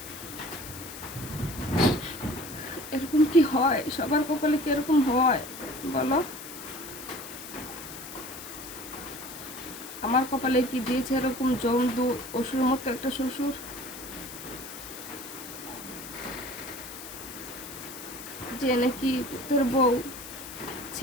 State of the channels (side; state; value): left; noise; hiss, 12 dB below the sound